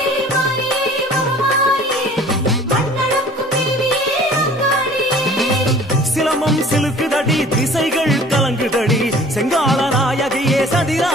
சிலம்பம் சிலுக்குதடி திசைகள் கலங்குதடி செங்கால நாயகியே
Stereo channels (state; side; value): normal; both; correlation 0.49